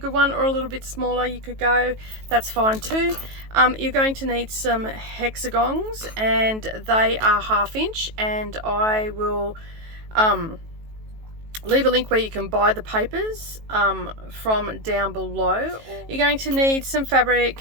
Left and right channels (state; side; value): late; left; 18 ms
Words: one, or a little bit smaller you could go, that's fine too. You're going to need some hexagons, and they are 1/2 inch, and I will leave a link where you can buy the papers from down below. You're going to need some fabric.